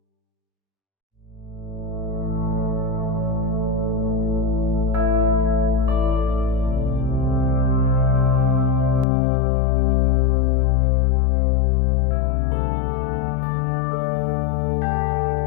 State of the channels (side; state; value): right; drops out; at 9.1 s